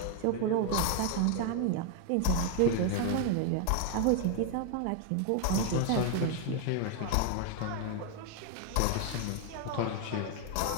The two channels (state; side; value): different; both; correlation 0.00